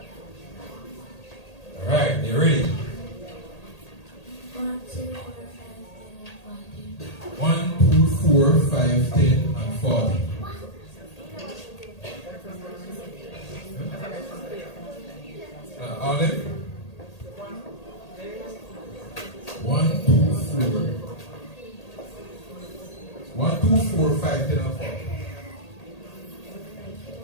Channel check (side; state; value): right; late; 1.8 ms